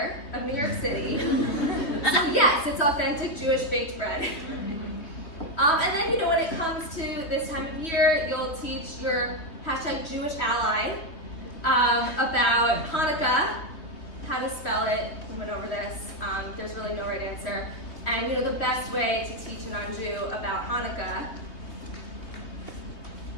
of New York City. So yes, it's authentic Jewish baked bread. And then, when it comes to this time of year, you'll teach your #JewishAlly about Hanukkah, how to spell it. We went over this. There's really no right answer. And the best way to teach a non-Jew about Hanukkah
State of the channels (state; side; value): late; right; 3.4 ms